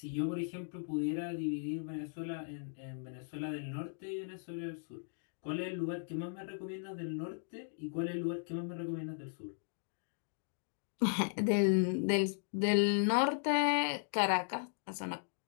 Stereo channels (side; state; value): right; silent; digital silence